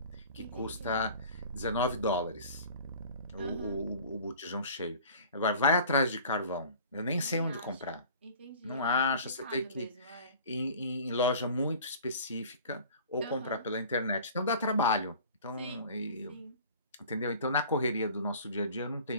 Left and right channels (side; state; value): both; inverted; correlation -0.45